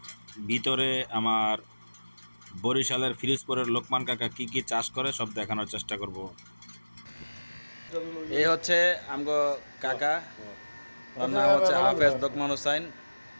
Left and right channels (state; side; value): inverted; both; correlation -1.00